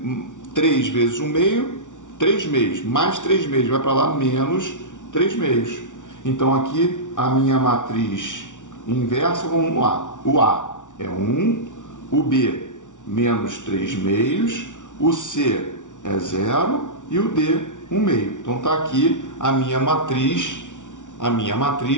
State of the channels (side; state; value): right; late; 0.87 ms